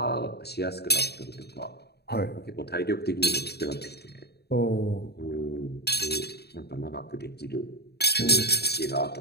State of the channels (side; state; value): right; late; 0.47 ms